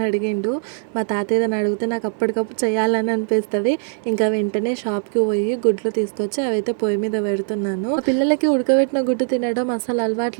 అడిగిండు. మా తాత ఏదైనా అడిగితే నాకు అప్పటికప్పుడు చేయాలని అనిపిస్తుంది. ఇంకా వెంటనే షాప్కి పోయి గుడ్లు తీసుకొచ్చి అవైతే పొయ్యి మీద పెడుతున్నాను. ఆ పిల్లలకి ఉడకబెట్టిన గుడ్డు తినడం అసలు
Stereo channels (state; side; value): silent; left; 58 dB below the other